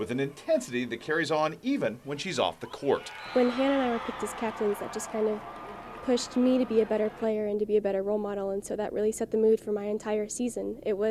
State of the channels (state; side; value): identical; both; correlation 1.00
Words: an intensity that carries on even when she's off the court. When Hannah and I were picked as captains, that just kind of pushed me to be a better player and to be a better role model, and so that really set the mood for my entire season. It